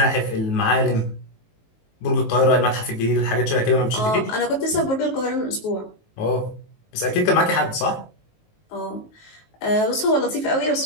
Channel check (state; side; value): late; right; 19 ms